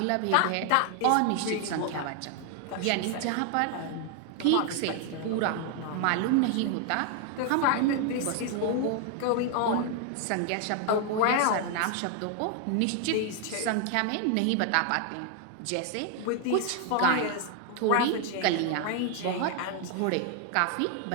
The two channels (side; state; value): both; different; correlation 0.00